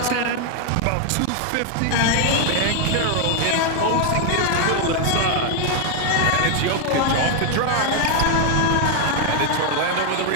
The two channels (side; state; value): both; different; correlation 0.00